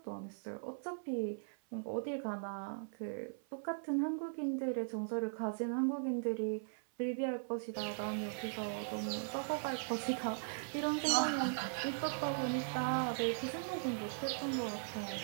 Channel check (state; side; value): silent; left; 52 dB below the other